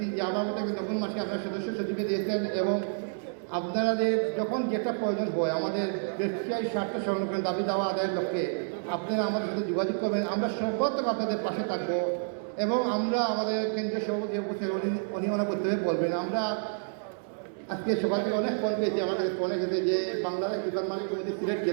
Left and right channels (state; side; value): silent; left; digital silence